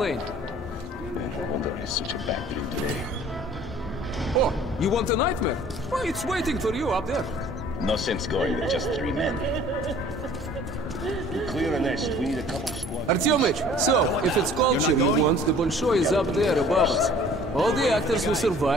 No wonder it's such a bad dream today. Oh, you want a nightmare? Well, it's waiting for you up there. No sense going with just 3 men. To clear a nest, we need a couple of squads. Artyomich, so, if it's culture you want, the Bolshoi is up there above us. All the actors who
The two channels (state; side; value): normal; both; correlation 0.51